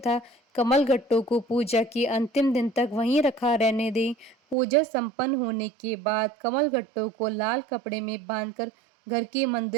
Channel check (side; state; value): left; drops out; at 4.5 s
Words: कमल गट्टों को पूजा के अंतिम दिन तक वहीं रखा रहने दें। पूजा संपन्न होने के बाद कमल गट्टों को लाल कपड़े में बांधकर घर के